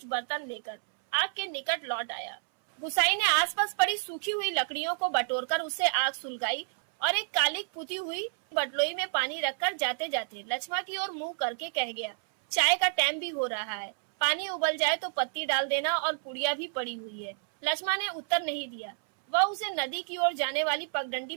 बर्तन लेकर आग के निकट लौट आया। गुसाई ने आसपास पड़ी सूखी हुई लकड़ियों को बटोरकर उससे आग सुलगाई और एक कालिक पुती हुई बटलोई में पानी रखकर जाते जाते लक्ष्मा की ओर मुंह करके कह गया, चाय का टाइम भी हो रहा है। पानी उबल जाए तो पत्ती डाल देना और पुड़िया भी पड़ी हुई है। लक्ष्मा ने उत्तर नहीं दिया। वह उसे नदी की ओर जाने वाली पगडंडी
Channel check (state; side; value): silent; left; 58 dB below the other